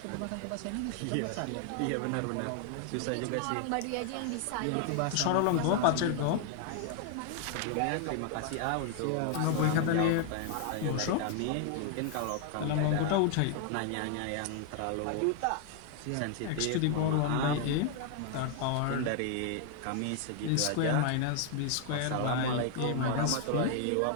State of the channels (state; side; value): different; both; correlation 0.00